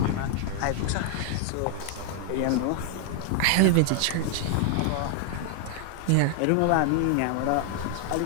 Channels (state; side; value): different; both; correlation 0.00